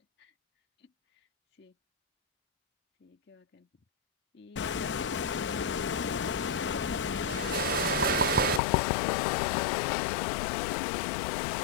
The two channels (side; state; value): right; drops out; at 8.6 s